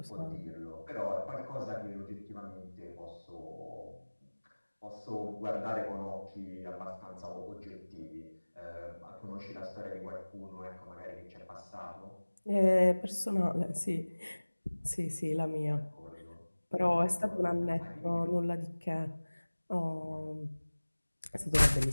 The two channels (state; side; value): inverted; both; correlation -1.00